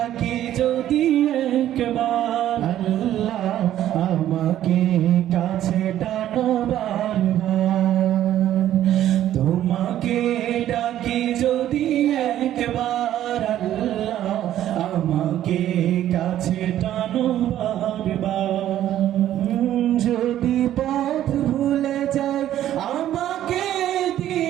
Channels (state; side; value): quieter; left; 12.2 dB